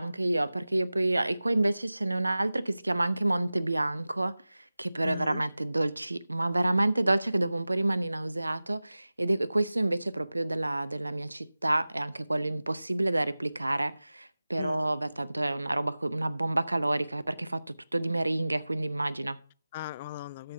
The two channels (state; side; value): inverted; both; correlation -0.97